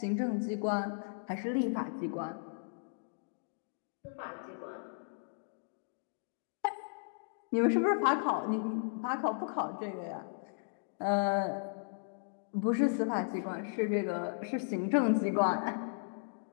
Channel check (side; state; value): right; silent; digital silence